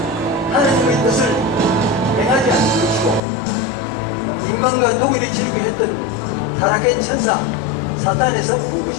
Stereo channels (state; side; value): drops out; right; at 3.2 s